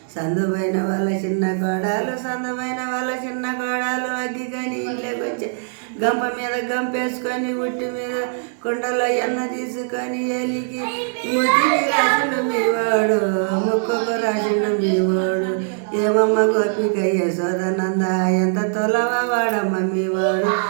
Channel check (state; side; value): silent; left; digital silence